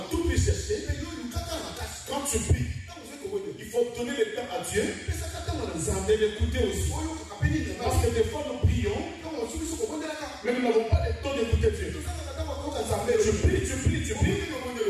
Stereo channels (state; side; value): identical; both; correlation 1.00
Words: tout prix chercher. Quand tu pries, il faut donner le temps à Dieu et l'écouter aussi. Parce que des fois nous prions, mais nous n'avons pas le temps d'écouter Dieu. Tu pries,